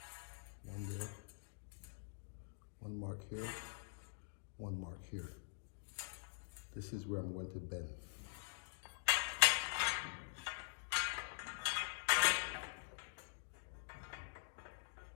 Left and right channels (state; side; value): silent; right; digital silence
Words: One there, 1 mark here, 1 mark here. This is where I'm going to bend.